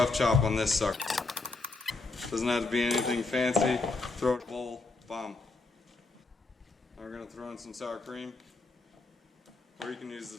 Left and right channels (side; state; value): right; quieter; 3.7 dB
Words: chop on this sucker. Doesn't have to be anything fancy. Throw it in a bowl, bomb. Now we're going to throw in some sour cream. Or you can use the